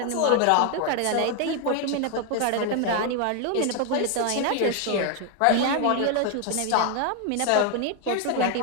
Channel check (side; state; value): both; different; correlation 0.01